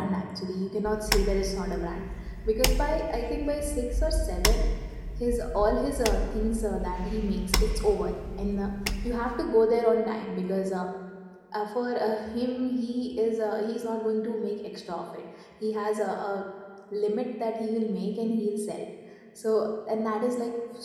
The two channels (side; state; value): both; identical; correlation 1.00